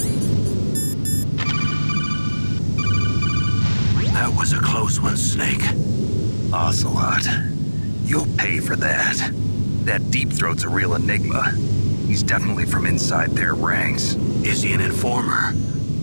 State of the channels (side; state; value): both; inverted; correlation -1.00